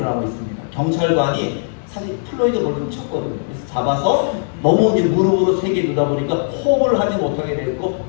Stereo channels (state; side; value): silent; right; digital silence